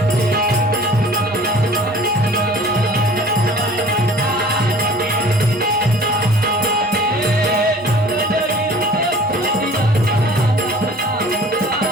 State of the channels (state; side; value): normal; both; correlation 0.47